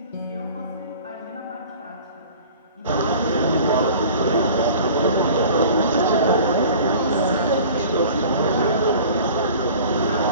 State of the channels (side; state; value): both; inverted; correlation -0.44